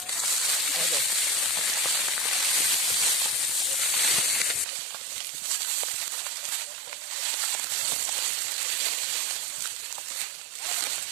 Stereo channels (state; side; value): drops out; left; at 4.7 s